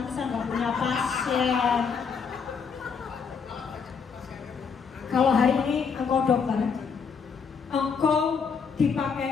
saya nggak punya pasien. Kalau hari ini engkau dokter, engkau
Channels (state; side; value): quieter; right; 6.0 dB